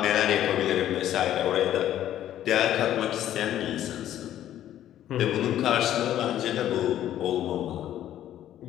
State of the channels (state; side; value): quieter; right; 11.9 dB